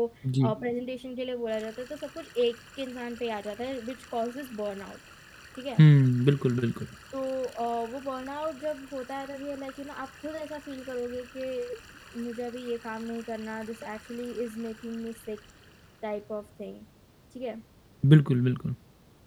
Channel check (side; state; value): both; identical; correlation 1.00